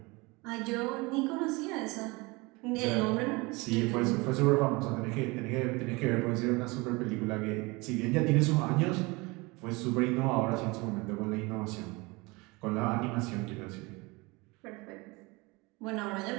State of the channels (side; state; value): left; quieter; 25.0 dB